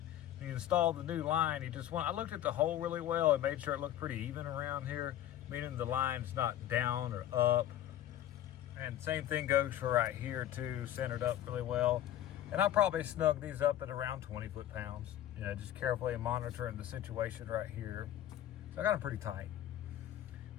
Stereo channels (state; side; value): quieter; right; 12.1 dB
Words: when you install the new line, I looked at the hole really well and made sure it looked pretty even around here, meaning the line's not down or up. And same thing goes for right here too, centered up really well. And I'll probably snug these up at around 20 foot-pounds, you know, just carefully monitoring the situation right here. So I got them pretty tight.